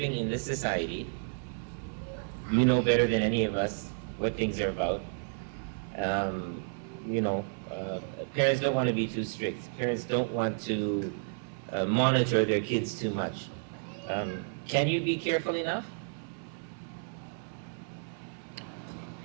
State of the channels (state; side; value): silent; left; 57 dB below the other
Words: in this society. You know better than any of us what things are about. Parents don't want to be too strict. Parents don't want to monitor their kids too much. Can you be careful enough?